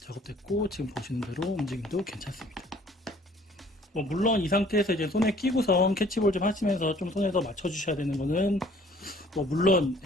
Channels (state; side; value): normal; both; correlation 0.56